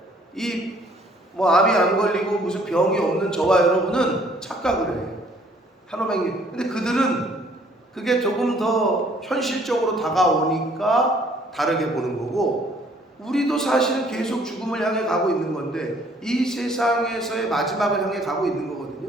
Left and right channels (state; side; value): normal; both; correlation 0.61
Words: 이 뭐 암이 안 걸리고 무슨 병이 없는 저와 여러분은 착각을 해요. 한오백님. 근데 그들은 그게 조금 더 현실적으로 다가오니까 다르게 보는 거고, 우리도 사실은 계속 죽음을 향해 가고 있는 건데 이 세상에서의 마지막을 향해 가고 있는